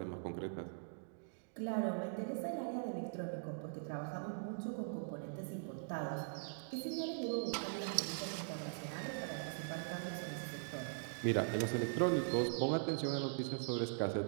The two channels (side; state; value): left; silent; digital silence